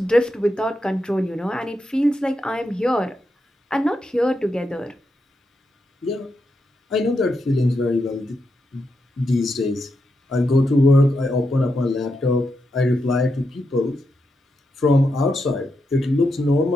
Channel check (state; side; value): normal; both; correlation 0.85